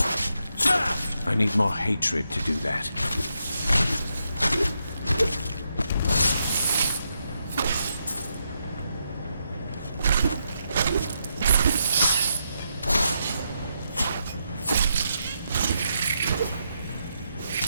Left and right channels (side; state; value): both; inverted; correlation -0.82